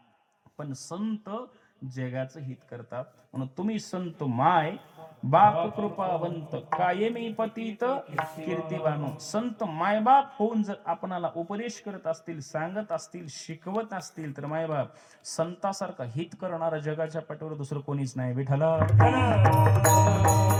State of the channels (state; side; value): identical; both; correlation 1.00